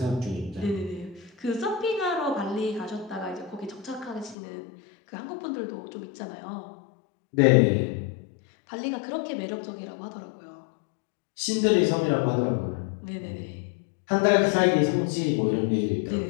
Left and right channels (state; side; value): drops out; right; at 4.4 s